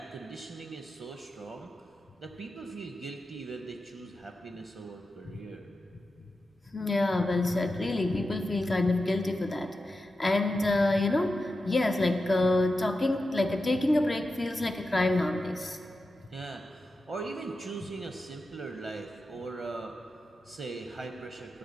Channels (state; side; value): normal; both; correlation 0.91